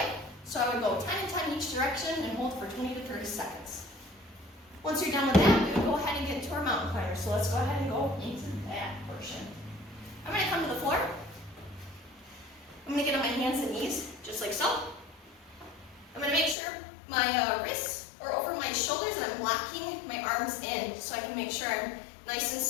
So I would go 10 and 10 each direction and hold for 20 to 30 seconds. Once you're done with that, we would go ahead and get into our mountain climber. So let's go ahead and go into that portion. I'm going to come to the floor. I'm going to get on my hands and knees, just like so. I'm going to make sure my wrists are over my shoulders and I'm locking my arms in so I can make sure I'm nice and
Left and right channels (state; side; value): drops out; right; at 16.6 s